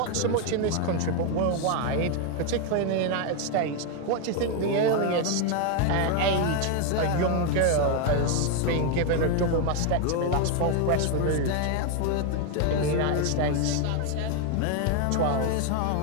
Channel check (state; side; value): different; both; correlation 0.01